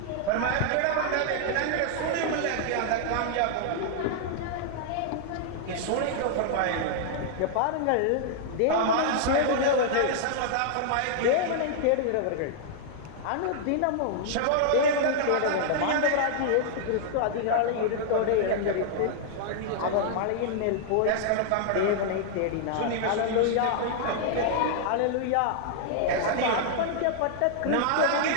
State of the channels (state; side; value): different; both; correlation -0.01